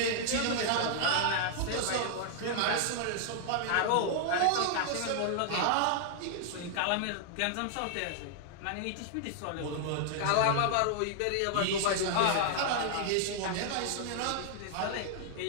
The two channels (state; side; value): different; both; correlation -0.01